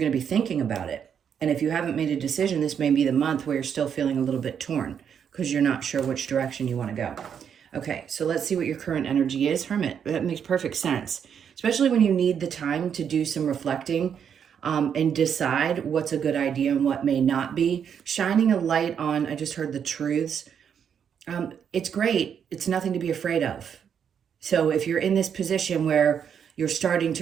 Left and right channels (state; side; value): quieter; left; 7.9 dB